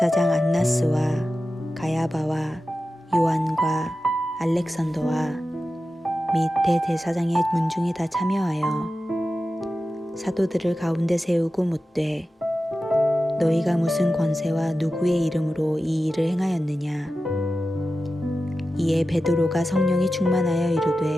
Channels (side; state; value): both; normal; correlation 0.93